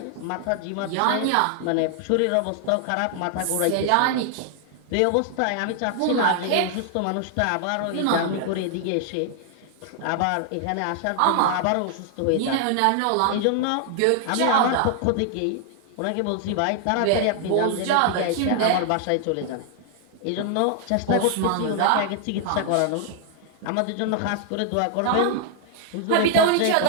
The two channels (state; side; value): different; both; correlation 0.00